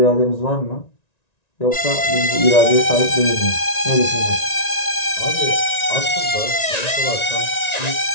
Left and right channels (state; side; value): late; right; 1.9 ms